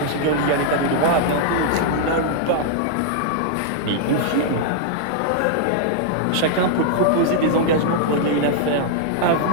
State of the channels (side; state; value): both; different; correlation -0.01